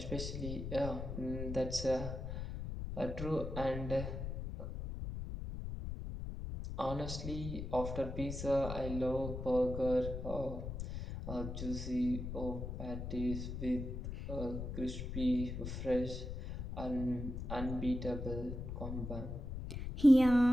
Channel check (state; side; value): noise; left; rumble, 6 dB below the sound